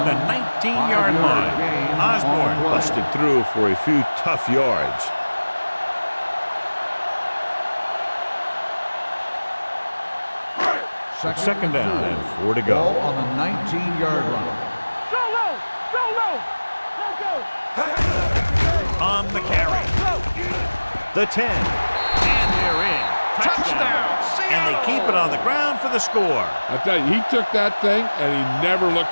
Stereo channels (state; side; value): inverted; both; correlation -1.00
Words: the 19-yard line. Osborne busted through for a few tough yards. Second down and 4 to go. Ball on the 19-yard line. Solo. Let's go. On the carry. The 10. And they're in. Touchdown. And they keep it on the ground for the score. I tell you, he took that thing and he never